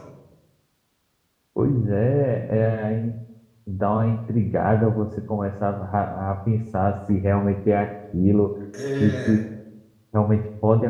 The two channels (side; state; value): both; identical; correlation 1.00